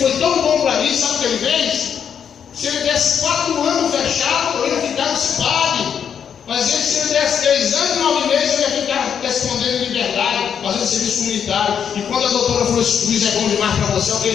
tão bom para mim, sabe o que ele fez? Se ele desse 4 anos fechado, eu ia ficar no CIPAD. Mas se ele desse 3 anos e 9 meses, eu ia ficar respondendo em liberdade, fazendo serviço comunitário. E quando a doutora falou: esse juiz é bom demais para você, o que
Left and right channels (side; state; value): right; quieter; 7.8 dB